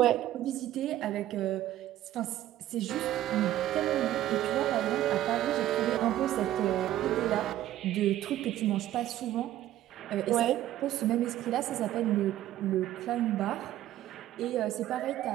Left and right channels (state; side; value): quieter; left; 13.4 dB